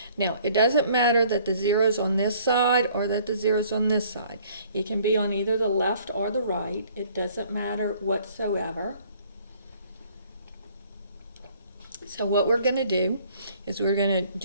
Now, it doesn't matter that the 0 is on this side or that the 0 is on this side. It can be on either the left or the right. It doesn't matter whatsoever. So what we're going to do is we're going to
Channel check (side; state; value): both; inverted; correlation -0.58